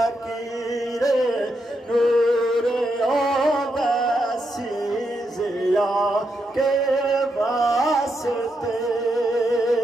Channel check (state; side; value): normal; both; correlation 0.82